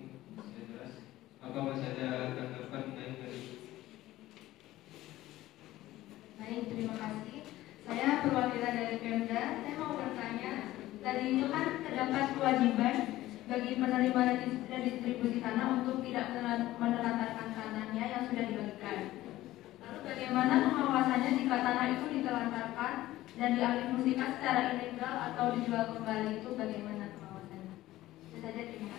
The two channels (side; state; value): right; quieter; 15.8 dB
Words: sudah jelas. Apa masih ada tanggapan lain dari? Baik, terima kasih. Saya perwakilan dari Pemda. Saya mau bertanya, tadi itu kan terdapat kewajiban bagi penerima redistribusi tanah untuk tidak menelantarkan tanahnya yang sudah dibagikan. Lalu bagaimana pengawasannya jika tanah itu ditelantarkan dan dialihfungsikan secara ilegal atau dijual kembali, itu bagaimana pengawasannya? Itu saja, terima